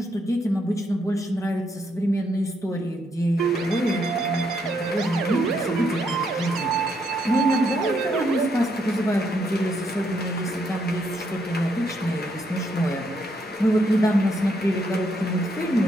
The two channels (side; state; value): both; normal; correlation 0.75